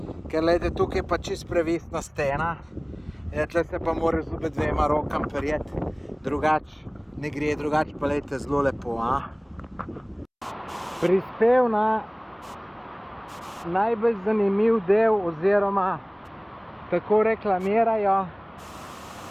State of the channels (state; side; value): identical; both; correlation 1.00